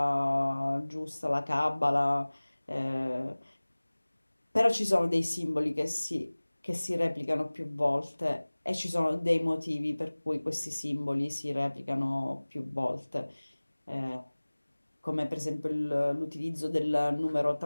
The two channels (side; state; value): both; inverted; correlation -1.00